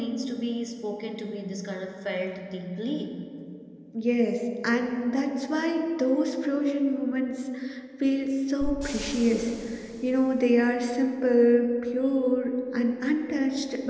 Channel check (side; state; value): both; identical; correlation 1.00